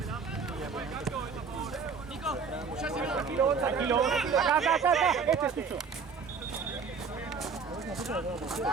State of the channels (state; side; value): quieter; left; 5.5 dB